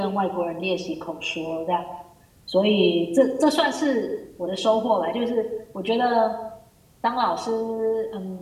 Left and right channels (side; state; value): both; identical; correlation 1.00